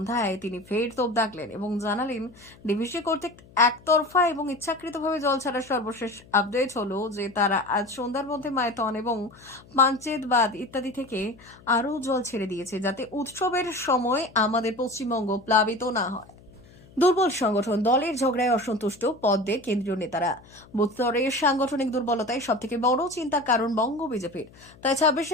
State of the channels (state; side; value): noise; left; hum, 24 dB below the sound